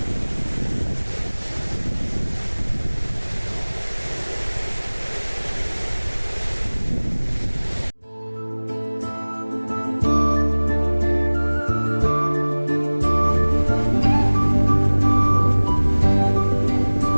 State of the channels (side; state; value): both; inverted; correlation -1.00